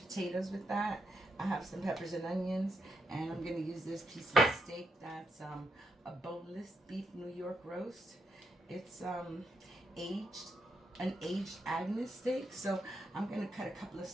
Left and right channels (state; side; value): normal; both; correlation 0.81